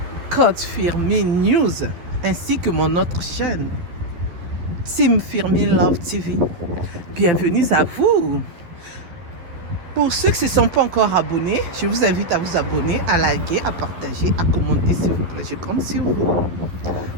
Code Firmin News, ainsi que mon autre chaîne Team Firmin Love TV. Bienvenue à vous. Pour ceux qui ne se sont pas encore abonnés, je vous invite à vous abonner, à liker, à partager, à commenter s'il vous plaît. Je compte sur vous.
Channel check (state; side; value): late; left; 11 ms